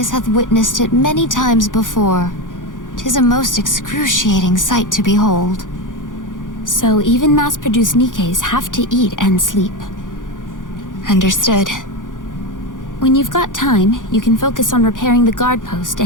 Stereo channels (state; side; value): late; right; 0.88 ms